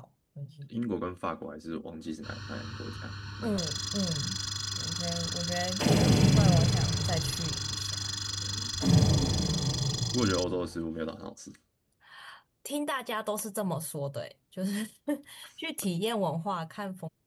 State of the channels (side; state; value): both; identical; correlation 1.00